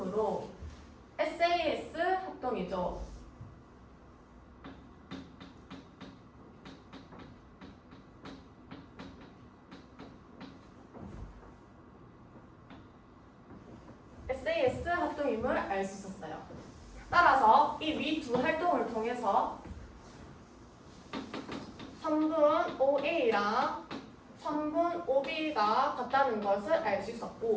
SAS 합동이죠. SAS 합동임을 알 수 있었어요. 따라서 이 위 두 활동을 통해서 선분 OA랑 선분 OB가 같다는 것을 알 수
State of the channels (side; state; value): both; identical; correlation 1.00